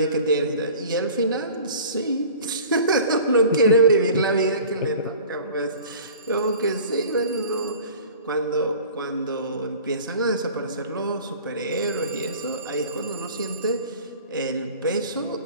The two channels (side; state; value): both; inverted; correlation -0.44